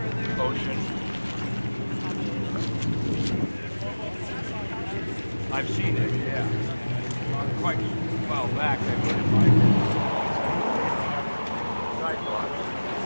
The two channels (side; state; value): both; inverted; correlation -1.00